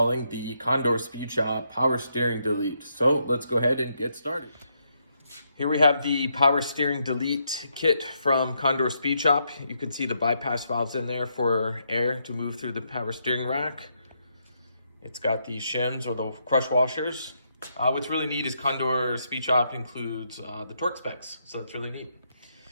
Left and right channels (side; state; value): both; inverted; correlation -0.78